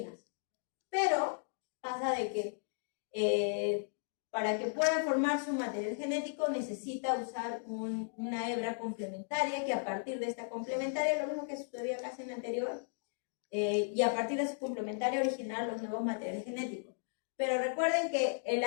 Pero pasa de que para que pueda formar su material genético necesita usar una hebra complementaria, que a partir de esta complementaria, lo mismo que sucedía casi en la anterior, y a partir de su complementaria originar los nuevos materiales genéticos. Pero recuerden que el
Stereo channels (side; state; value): right; silent; digital silence